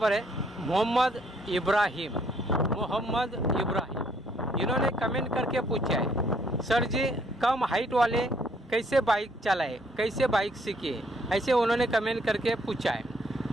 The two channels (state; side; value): normal; both; correlation 0.66